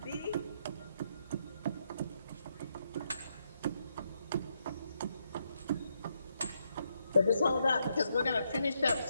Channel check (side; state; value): both; inverted; correlation -0.79